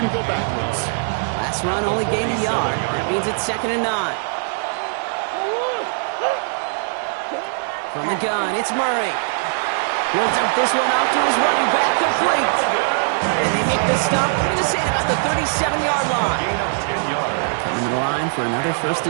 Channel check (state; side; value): silent; left; digital silence